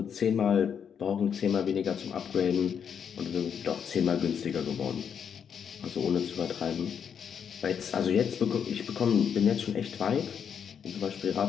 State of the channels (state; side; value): quieter; right; 7.6 dB